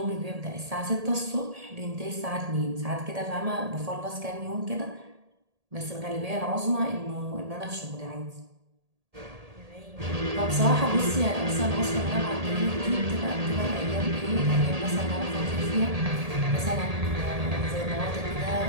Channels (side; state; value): left; late; 1.8 ms